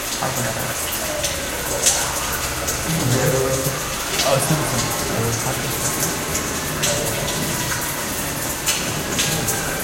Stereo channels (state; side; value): identical; both; correlation 1.00